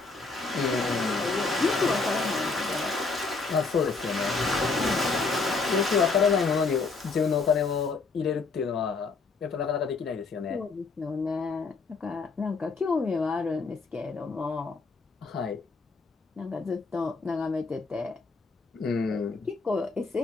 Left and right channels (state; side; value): quieter; right; 4.2 dB